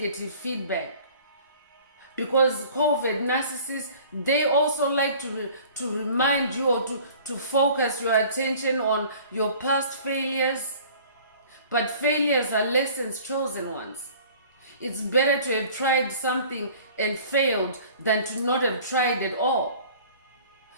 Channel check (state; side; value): inverted; both; correlation -0.48